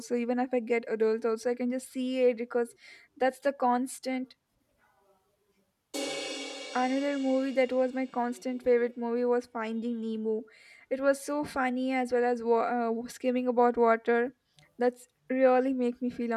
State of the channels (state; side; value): identical; both; correlation 1.00